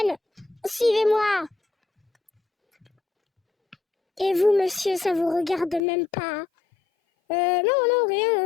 Suivez-moi. Et vous, monsieur, ça vous regarde même pas? Non,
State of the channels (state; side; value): drops out; right; at 5.8 s